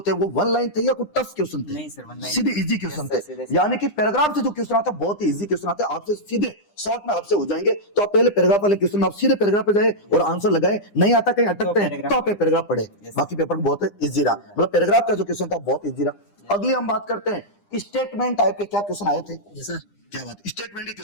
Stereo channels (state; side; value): late; right; 9.9 ms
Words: थे वो 1 लाइन थे या कोई टफ क्वेश्चन थे? नहीं सर, 1 लाइन सीधे इजी क्वेश्चन थे। यानी कि पैराग्राफ से जो क्वेश्चन आता है बहुत ही इजी क्वेश्चन आते हैं, आपसे सीधे शॉर्ट में आपसे हो जाएंगे। तो आप पहले पैराग्राफ वाले क्वेश्चन आप सीधे पैराग्राफ पे जाए और आंसर लगाए, नहीं आता कहीं अटकते हैं तो आप पैराग्राफ पढ़े। बाकी पेपर बहुत इजी रहा, मतलब पैराग्राफ का जो क्वेश्चन था बहुत इजी रहा। अगली हम बात करते हैं स्टेटमेंट टाइप के, क्या क्वेश्चन आए थे? सर क्या बात, स्टेटमेंट के